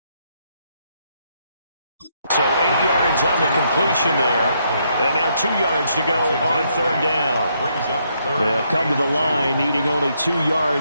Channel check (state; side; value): inverted; both; correlation -0.75